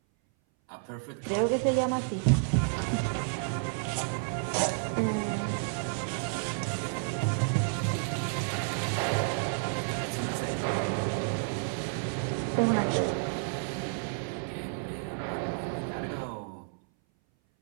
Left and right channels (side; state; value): left; silent; 57 dB below the other